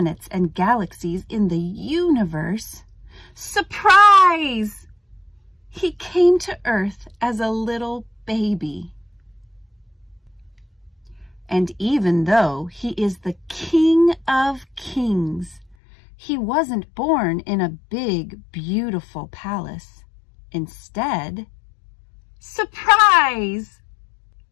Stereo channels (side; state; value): right; drops out; at 15.8 s